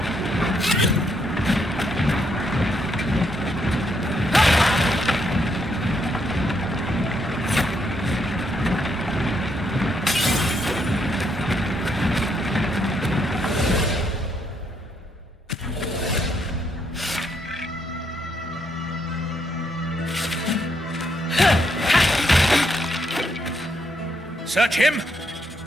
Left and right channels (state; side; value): normal; both; correlation 0.75